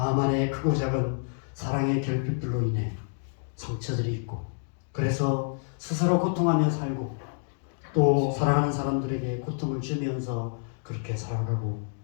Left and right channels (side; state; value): right; silent; 59 dB below the other